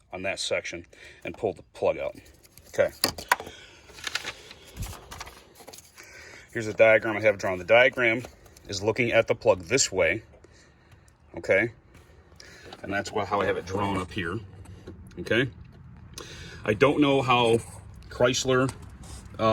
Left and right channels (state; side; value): identical; both; correlation 1.00